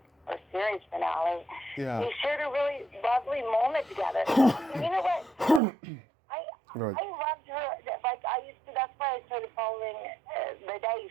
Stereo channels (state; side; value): drops out; left; at 5.6 s